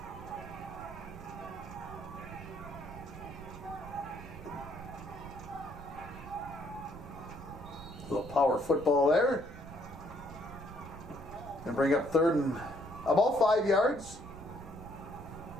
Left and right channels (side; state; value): right; noise; rumble, 14 dB below the sound